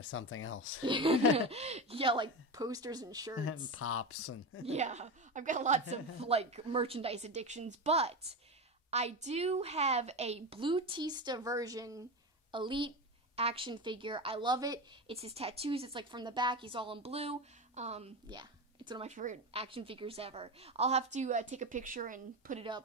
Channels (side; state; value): both; normal; correlation 0.21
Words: something else. Yeah, like posters and shirts. And pops. Yeah, I've got lots of, merchandise addictions, but I do have a Blue-tista version Elite action figure. I love it. It's his tattoos. It's from the back. He's all in blue. Yeah, it's one of my favorite action figures ever. I'll have to take a picture and put it